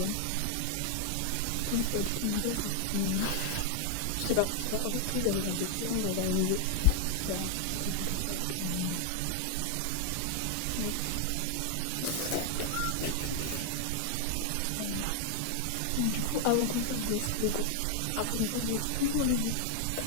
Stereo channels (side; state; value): both; different; correlation 0.00